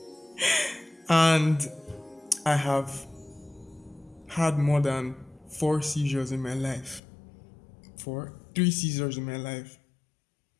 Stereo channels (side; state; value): right; drops out; at 7.0 s